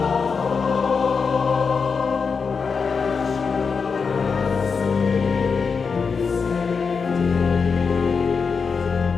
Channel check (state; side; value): quieter; right; 5.4 dB